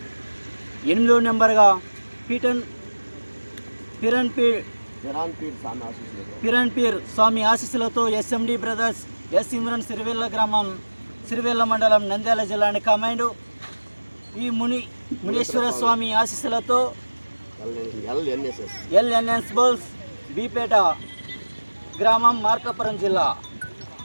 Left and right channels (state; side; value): inverted; both; correlation -1.00